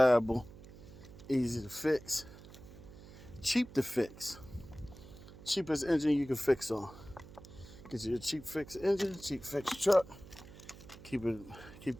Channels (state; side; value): noise; right; hum, 17 dB below the sound